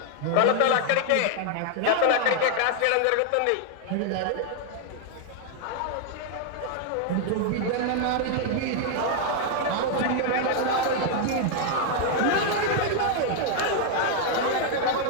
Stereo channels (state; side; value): different; both; correlation 0.00